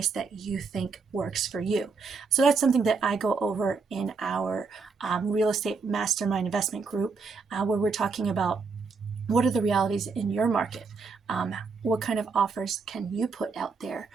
that you think works for you. So that's something that I go over in our real estate mastermind investment group, where we're talking about what are the realities in your market? What kind of offers can you put out there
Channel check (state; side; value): quieter; left; 4.7 dB